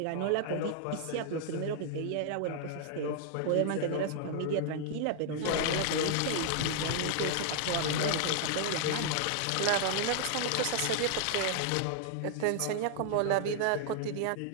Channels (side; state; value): both; different; correlation -0.01